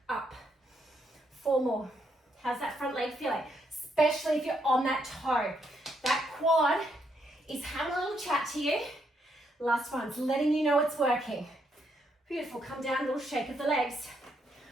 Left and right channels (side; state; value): both; normal; correlation 0.76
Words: up. 4 more. How's that front leg feeling? Especially if you're on that toe. That quad is having a little chat to you. Last one's letting you know it's working. Beautiful, come down, a little shake of the legs.